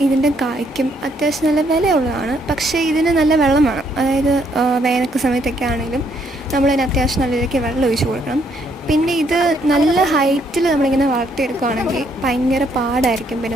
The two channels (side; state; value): both; normal; correlation 0.70